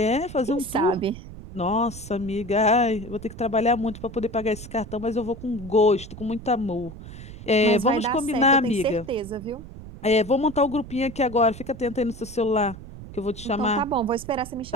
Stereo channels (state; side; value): noise; right; rumble, 14 dB below the sound